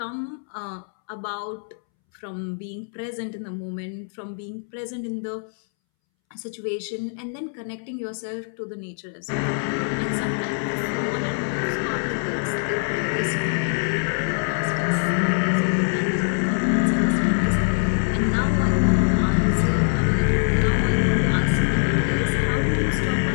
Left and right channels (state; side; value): silent; right; 63 dB below the other